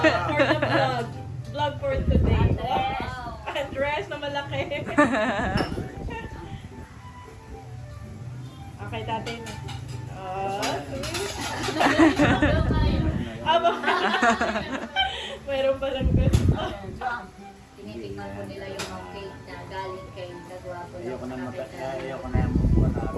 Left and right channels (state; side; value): identical; both; correlation 1.00